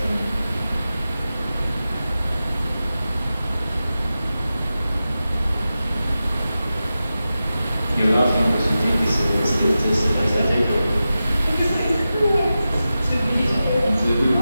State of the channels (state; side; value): inverted; both; correlation -0.93